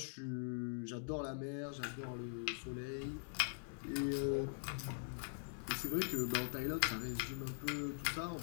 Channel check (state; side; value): silent; right; digital silence